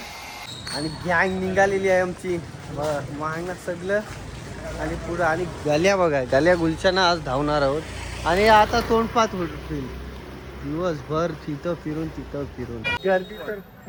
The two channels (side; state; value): both; identical; correlation 1.00